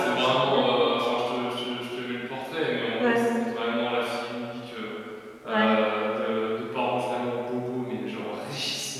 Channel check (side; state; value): both; identical; correlation 1.00